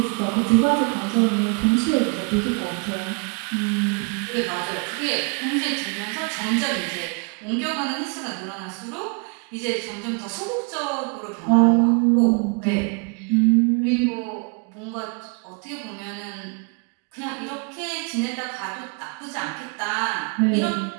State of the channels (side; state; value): left; quieter; 35.4 dB